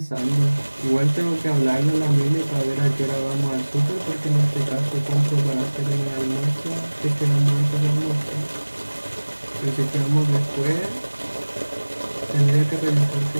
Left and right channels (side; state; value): both; inverted; correlation -1.00